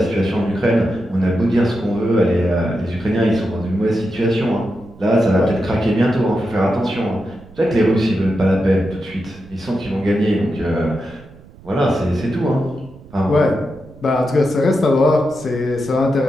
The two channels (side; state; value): right; noise; rumble, 22 dB below the sound